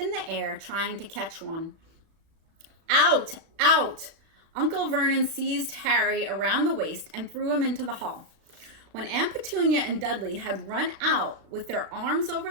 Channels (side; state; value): left; late; 36 ms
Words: the air trying to catch one. Out! Out! Uncle Vernon seized Harry around the waist and threw him into the hall. When Aunt Petunia and Dudley had run out with their arms over